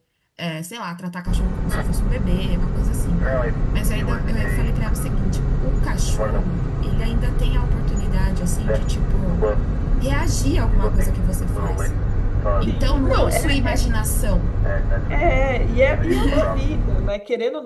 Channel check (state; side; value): identical; both; correlation 1.00